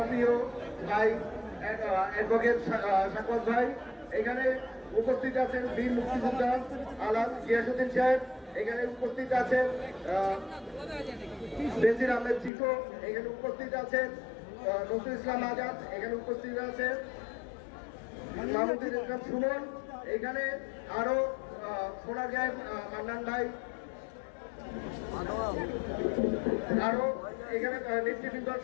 প্রিয় ভাই অ্যাডভোকেট সাকওয়াত ভাই। এখানে উপস্থিত আছেন বীর মুক্তিযোদ্ধা আলাদ গিয়াসউদ্দিন সাহেব, এখানে উপস্থিত আছেন বেনজির আহমেদ চিকো, এখানে উপস্থিত আছেন নজরুল ইসলাম আজাদ, এখানে উপস্থিত আছেন মাহমুদুল ইসলাম সুমন, এখানে আরো শোনা যায় মান্নান ভাই, আরো এখানে নেতৃবৃন্দ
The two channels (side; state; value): right; drops out; at 12.5 s